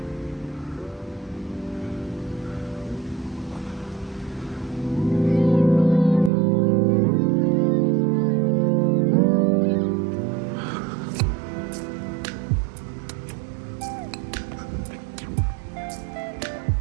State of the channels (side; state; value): left; drops out; at 6.3 s